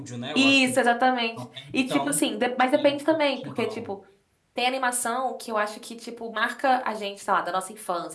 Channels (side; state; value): both; identical; correlation 1.00